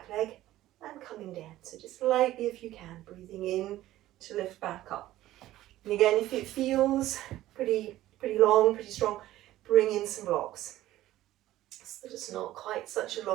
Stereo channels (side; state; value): left; quieter; 14.9 dB